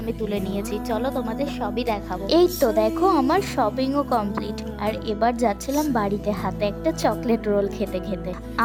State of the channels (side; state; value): both; identical; correlation 1.00